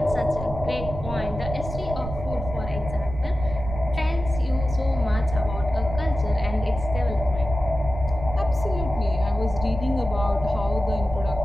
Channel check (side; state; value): right; noise; rumble, 8 dB below the sound